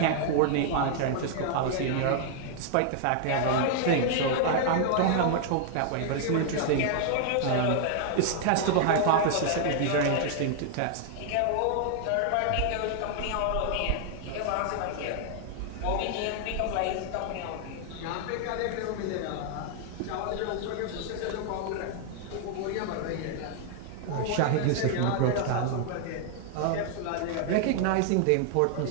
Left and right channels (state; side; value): different; both; correlation 0.00